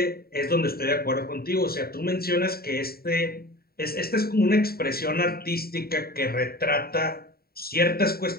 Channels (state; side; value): late; right; 0.45 ms